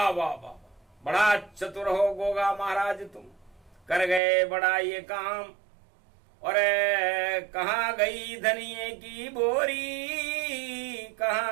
वाह वाह, बड़ा चतुर हो गोगा महाराज तुम, कर गए बड़ा ये काम। और कहाँ गई धनिये की बोरी,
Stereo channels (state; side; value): drops out; left; at 4.2 s